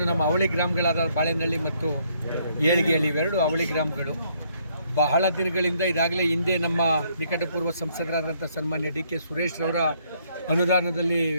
ನಮ್ಮ ಅವಳಿ ಗ್ರಾಮಗಳಾದ ಬಾಳೆನಹಳ್ಳಿ ಮತ್ತು ಏಳಿಗೆಹಳ್ಳಿ ಇವೆರಡು ಅವಳಿ ಗ್ರಾಮಗಳು ಬಹಳ ದಿನಗಳಿಂದ ಇದಾಗಲೇ ಹಿಂದೆ ನಮ್ಮ ನಿಕಟಪೂರ್ವ ಸಂಸದರಾದಂಥ ಸನ್ಮಾನ್ಯ ಡಿ ಕೆ ಸುರೇಶ್ ರವರ ಅನುದಾನದಲ್ಲಿ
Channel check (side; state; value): both; inverted; correlation -0.69